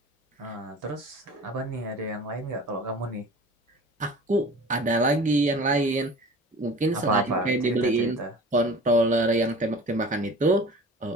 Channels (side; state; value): both; normal; correlation 0.41